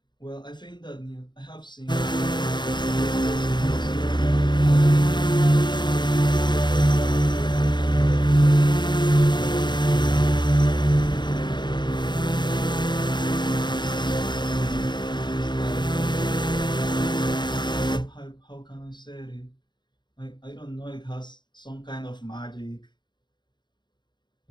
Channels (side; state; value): right; late; 0.22 ms